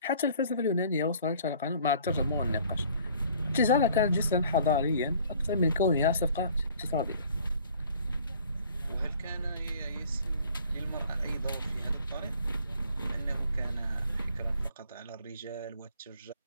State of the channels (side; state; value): both; inverted; correlation -0.54